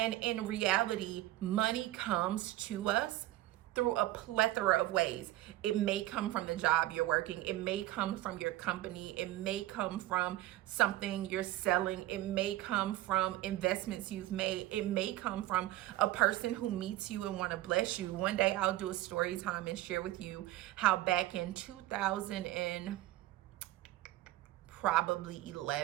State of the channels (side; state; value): left; quieter; 15.9 dB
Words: in reality, money comes to us through a plethora of ways. It may come from the job you're working. It may come from your company. It may come from something you're selling. It may come from investments you've made. It may come from a person who meets you and want to bless you. One day I'll do a story time and share with you how back in 2000 and probably